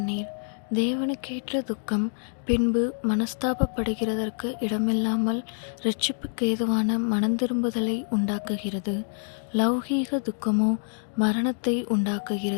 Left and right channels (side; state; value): right; silent; 61 dB below the other